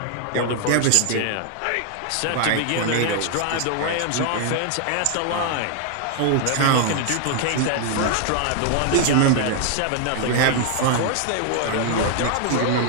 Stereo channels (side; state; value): both; different; correlation 0.00